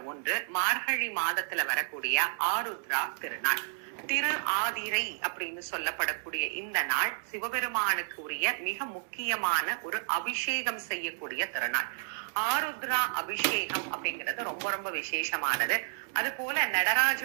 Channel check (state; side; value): silent; left; digital silence